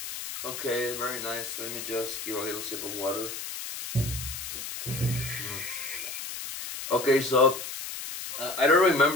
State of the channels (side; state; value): left; noise; hiss, 7 dB below the sound